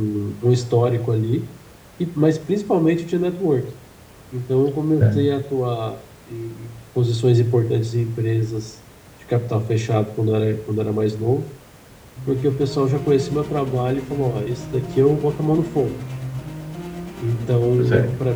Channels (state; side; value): identical; both; correlation 1.00